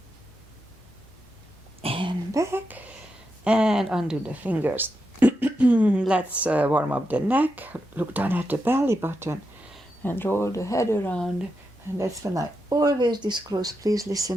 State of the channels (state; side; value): normal; both; correlation 0.86